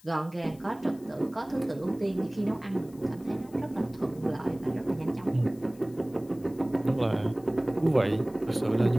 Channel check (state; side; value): noise; left; hiss, 26 dB below the sound